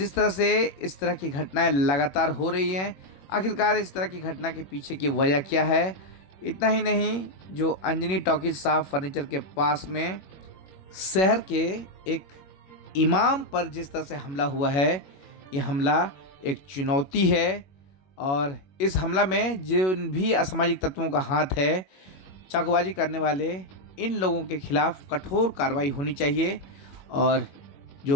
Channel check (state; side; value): late; right; 21 ms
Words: तरह से इस तरह की घटनाएं लगातार हो रही हैं, आखिरकार इस तरह की घटना के पीछे की वजह क्या है। इतना ही नहीं, जो अंजनी टॉकीज साफ फर्नीचर के पास में शहर के एक इमाम पर जिस तरह से हमला हुआ है, यह हमला एक चुनौती है और इस हमला में जिन भी असामाजिक तत्वों का हाथ है, चाकूबाजी करने वाले इन लोगों के खिलाफ कठोर कार्रवाई होनी चाहिए। और